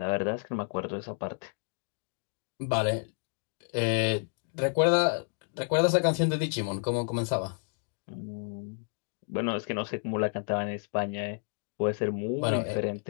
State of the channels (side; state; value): right; silent; 57 dB below the other